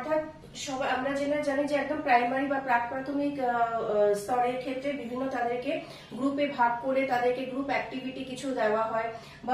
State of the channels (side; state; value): both; identical; correlation 1.00